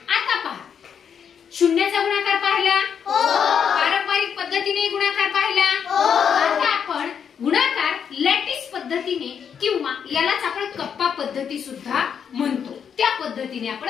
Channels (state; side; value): quieter; right; 7.5 dB